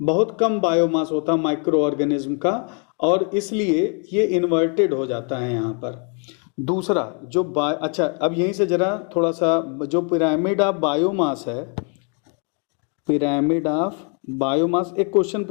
कम बायोमास होता है माइक्रो ऑर्गेनिज्म का, और इसलिए ये इन्वर्टेड हो जाता है यहाँ पर। दूसरा जो अच्छा, अब यहीं से जरा थोड़ा सा, जो पिरामिड ऑफ बायोमास है, पिरामिड ऑफ बायोमास, एक क्वेश्चन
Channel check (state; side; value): quieter; right; 39.0 dB